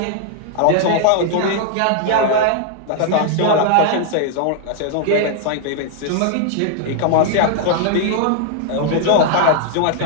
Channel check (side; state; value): both; different; correlation 0.00